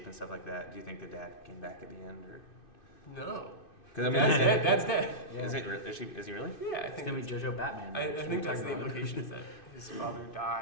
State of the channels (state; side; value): late; right; 2.6 ms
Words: and stuff like that. Do you think the dad came back at the end or? No. Because I mean, Dad's dead. Dad's dead. Is he really? Yeah, I It's think gonna be Jojo Batman. I think that's the implication is that his father